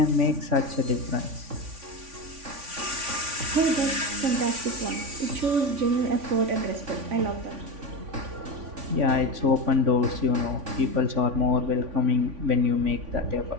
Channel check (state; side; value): late; left; 3.5 ms